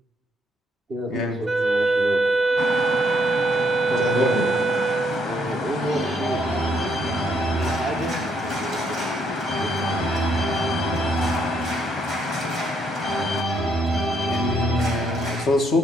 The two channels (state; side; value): normal; both; correlation 0.72